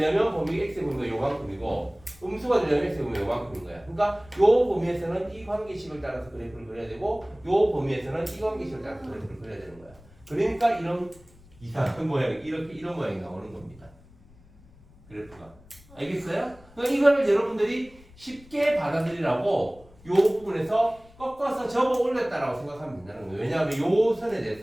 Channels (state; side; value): noise; left; rumble, 25 dB below the sound